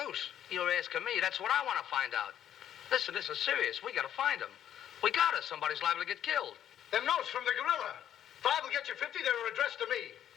You're asking me. That's what I want to find out. Listen, this is serious. We got to find him. We got us. Somebody's liable to get killed. Them notes from the gorilla. If I will get you 50, they were addressed to me.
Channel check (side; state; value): right; quieter; 10.5 dB